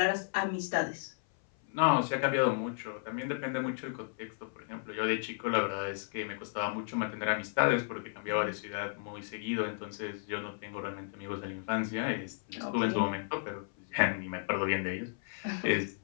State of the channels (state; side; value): silent; right; 55 dB below the other